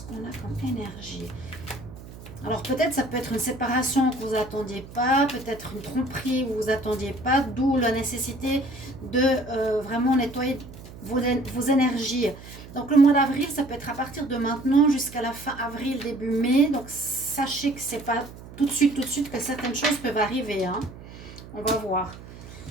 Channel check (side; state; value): right; noise; hum, 16 dB below the sound